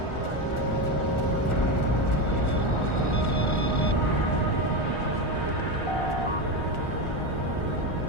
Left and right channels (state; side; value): late; right; 1.4 ms